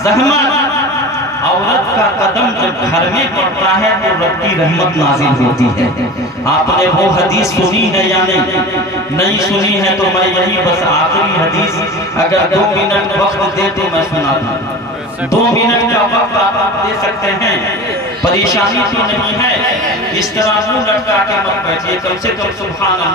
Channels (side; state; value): both; normal; correlation 0.34